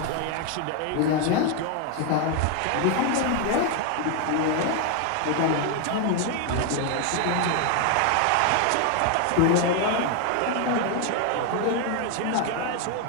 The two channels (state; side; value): different; both; correlation 0.01